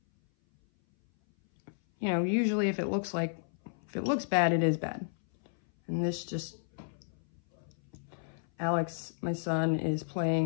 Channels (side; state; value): right; silent; 56 dB below the other